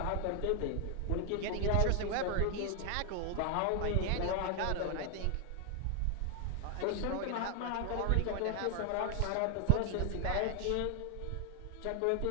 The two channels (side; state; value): both; different; correlation 0.00